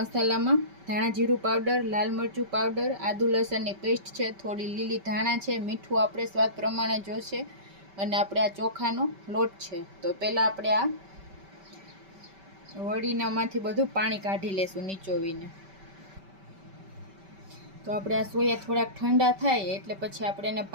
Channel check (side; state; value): left; late; 5.2 ms